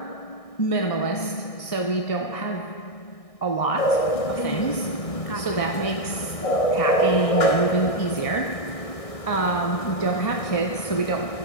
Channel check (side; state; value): right; late; 1.6 ms